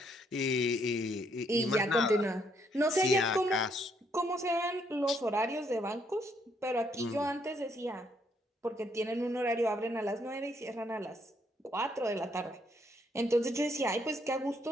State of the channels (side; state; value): both; normal; correlation 0.71